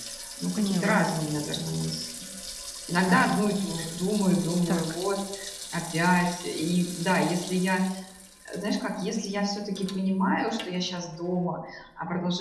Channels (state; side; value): identical; both; correlation 1.00